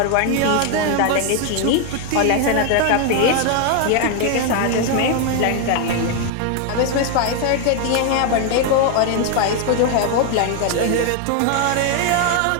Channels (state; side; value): different; both; correlation 0.00